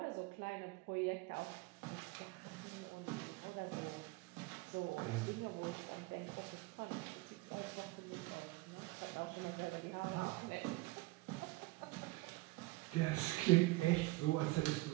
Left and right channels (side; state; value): left; quieter; 22.0 dB